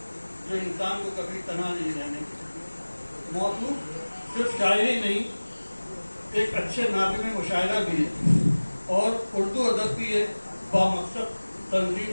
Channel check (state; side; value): inverted; both; correlation -1.00